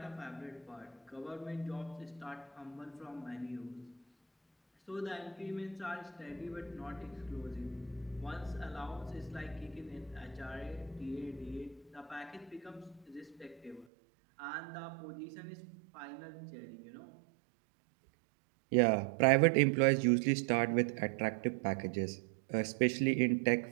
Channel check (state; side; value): drops out; left; at 13.9 s